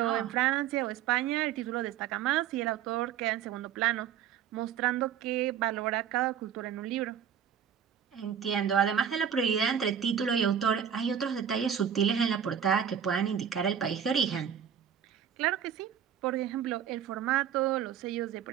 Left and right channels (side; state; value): left; quieter; 8.7 dB